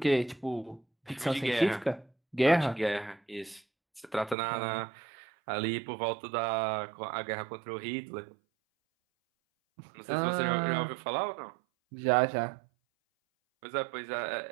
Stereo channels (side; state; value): left; drops out; at 4.4 s